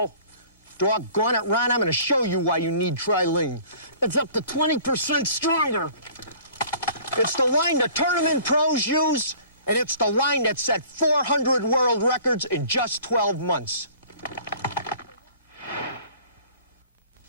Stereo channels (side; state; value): both; inverted; correlation -0.49